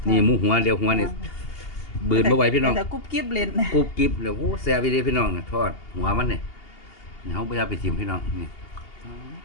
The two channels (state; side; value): late; right; 2.8 ms